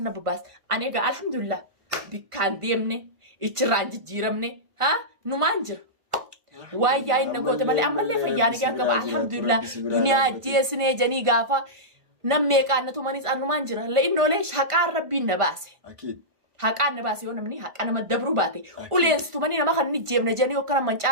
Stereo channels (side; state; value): left; late; 1.5 ms